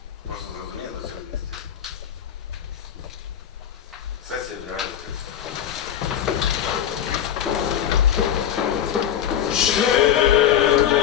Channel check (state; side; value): quieter; right; 9.9 dB